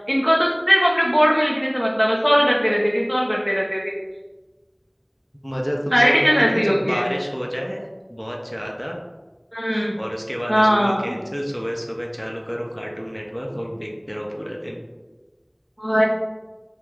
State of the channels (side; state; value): both; identical; correlation 1.00